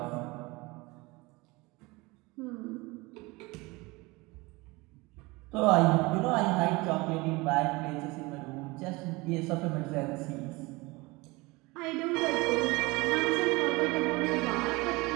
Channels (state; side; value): quieter; left; 23.6 dB